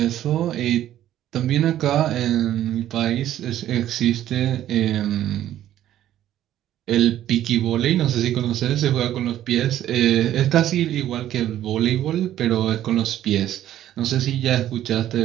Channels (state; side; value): quieter; left; 12.3 dB